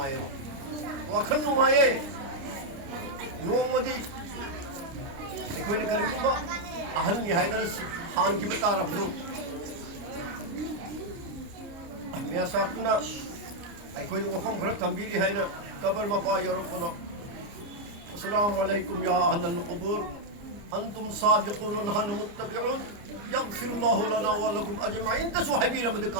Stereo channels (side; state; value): left; late; 29 ms